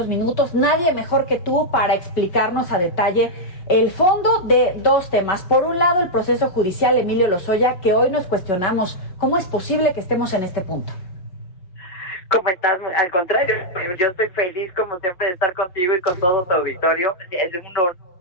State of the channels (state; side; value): late; right; 5.5 ms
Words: minutos. Nadie mejor que tú para explicarnos a detalle el fondo de dos temas. Por un lado, el proceso judicial Emilio Lozoya, que hoy nos cuestionamos cómo es posible que estemos en este punto. ¿Cómo estás? Al contrario, yo estoy feliz como siempre de estar contigo y con todo tu auditorio. Es un honor,